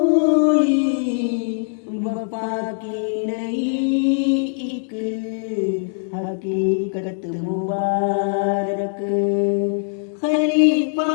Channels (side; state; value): right; silent; digital silence